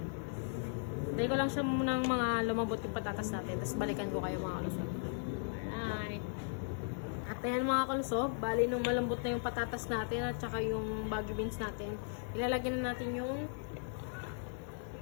Dahil ko lang siya munang mga lumabot yung patatas natin. Tapos balikan ko kayo mga kalusog. Alright. At ayan mga kalusog, bali nung malambot na yung patatas natin at saka yung Baguio beans natin, ilalagyan na natin yung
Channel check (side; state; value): right; silent; digital silence